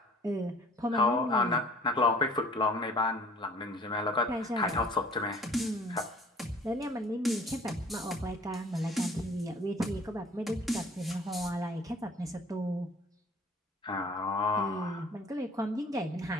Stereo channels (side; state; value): both; normal; correlation 0.51